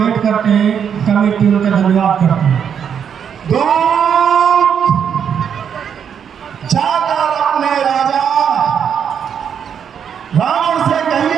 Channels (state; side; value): quieter; left; 7.8 dB